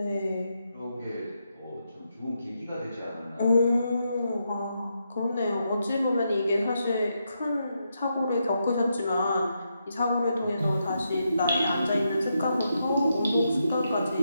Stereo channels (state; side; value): inverted; both; correlation -0.82